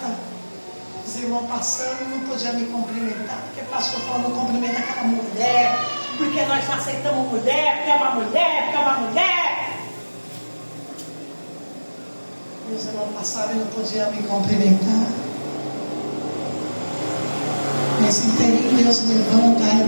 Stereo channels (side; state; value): both; inverted; correlation -1.00